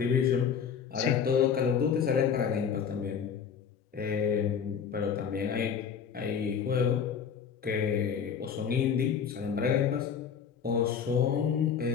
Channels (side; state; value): right; quieter; 7.2 dB